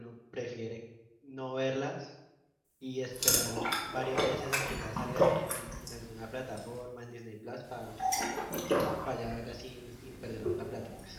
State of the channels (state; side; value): identical; both; correlation 1.00